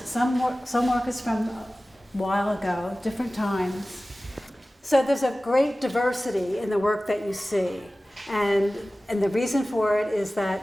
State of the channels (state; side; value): normal; both; correlation 0.97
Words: work is from a while ago, different times. So there's a great diversity in the work that you see, and the reason for it is